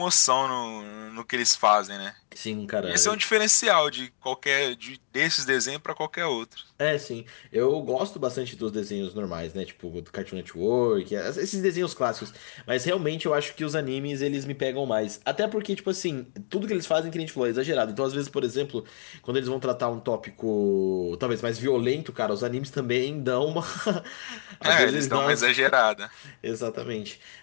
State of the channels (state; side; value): silent; right; digital silence